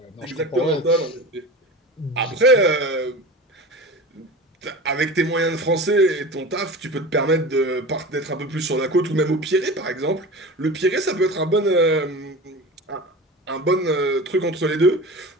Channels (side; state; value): both; normal; correlation 0.33